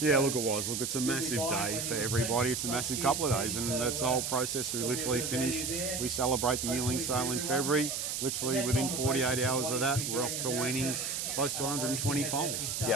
Yeah, look, it was. Look, it's a massive day for everybody. It's a massive couple of days, and that's the whole process. We literally finish, we celebrate the yearling sale in February. Literally within 48 hours of that, we're off to weaning close to 120 foals. Yeah.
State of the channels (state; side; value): noise; right; hiss, 2 dB below the sound